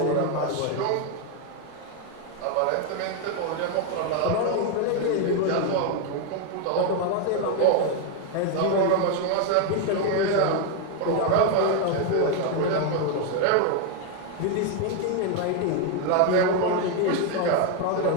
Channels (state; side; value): different; both; correlation 0.01